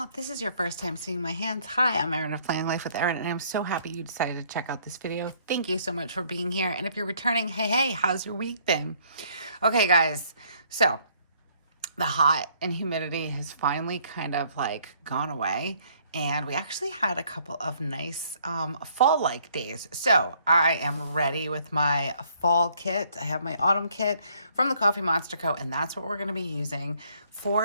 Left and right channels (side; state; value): both; inverted; correlation -0.64